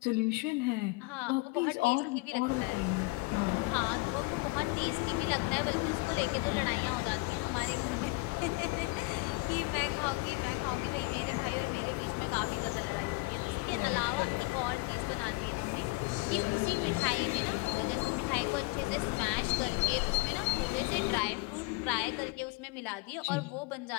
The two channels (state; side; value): quieter; right; 24.4 dB